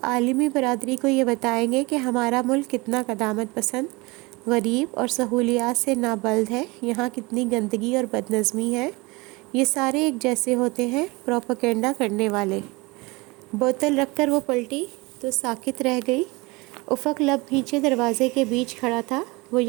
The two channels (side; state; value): left; quieter; 24.6 dB